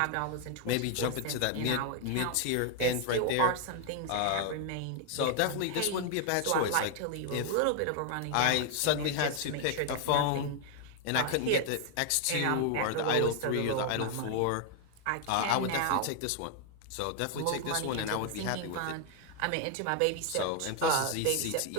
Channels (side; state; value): both; different; correlation 0.00